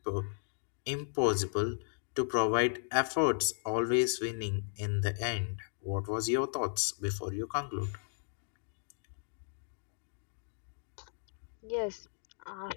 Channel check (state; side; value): silent; right; digital silence